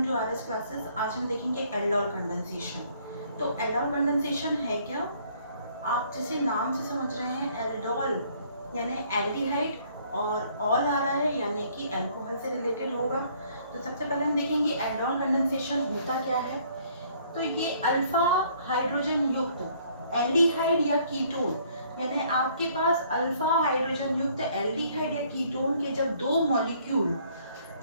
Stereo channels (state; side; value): inverted; both; correlation -0.62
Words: टू आरएस क्लासेस। आज हम देखेंगे एल्डोल कंडेंसेशन। तो एल्डोल कंडेंसेशन है क्या? आप जैसे नाम से समझ रहे हैं, एल्डोल यानी एल्डिहाइड और ऑल आ रहा है यानी कि अल्कोहल से रिलेटेड होगा। तो सबसे पहले हम देखेंगे एल्डोल कंडेंसेशन होता क्या है। तो ये अल्फा हाइड्रोजन युक्त एल्डिहाइड या कीटोन, यानी आपके पास अल्फा हाइड्रोजन युक्त एल्डिहाइड या कीटोन के जब दो मॉलिक्यूल